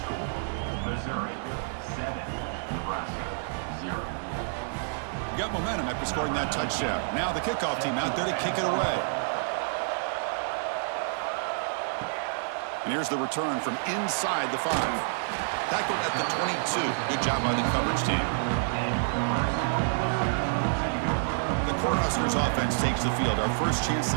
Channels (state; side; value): silent; left; digital silence